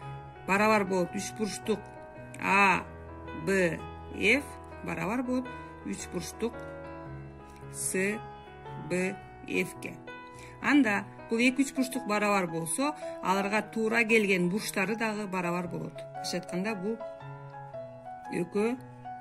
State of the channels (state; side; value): identical; both; correlation 1.00